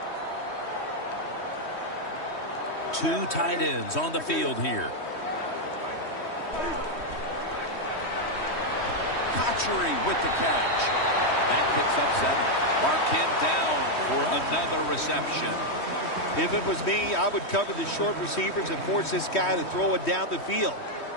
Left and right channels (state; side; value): late; right; 3.1 ms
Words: Two tight ends on the field here. Cotchery with the catch. That picks up 7. Mark him down for another reception. If it was me, I would cover the short receivers and force this guy to throw it down the field.